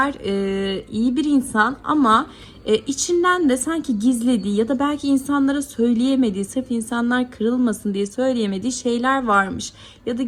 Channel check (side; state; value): both; identical; correlation 1.00